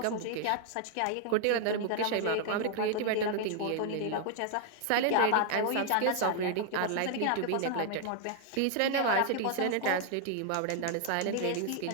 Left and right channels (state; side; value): different; both; correlation 0.00